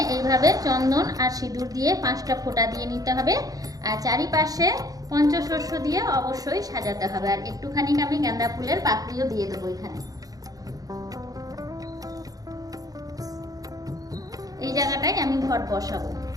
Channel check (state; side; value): late; left; 0.18 ms